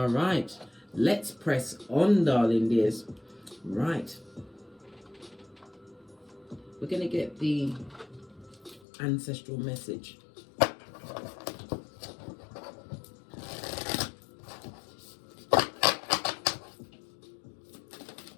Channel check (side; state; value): right; drops out; at 8.8 s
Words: right. Let's press on, darling dears. Right. We're going to get the ancestral message.